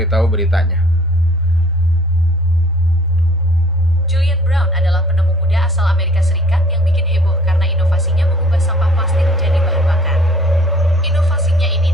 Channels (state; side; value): normal; both; correlation 0.55